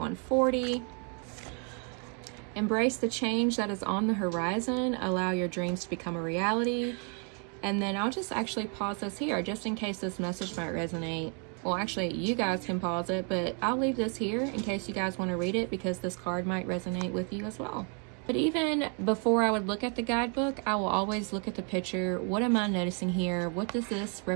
Embrace the change that is on the horizon. Allow your dreams to become a reality. And then I'll just actually pause this here just in case this message might resonate. Well, actually, you guys can pause it, but I'll leave this here in case you guys want to read it because this card might resonate with you as well. But even before I would look at the guidebook, I will always look at the picture. What am I noticing here? What does this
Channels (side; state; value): left; quieter; 38.8 dB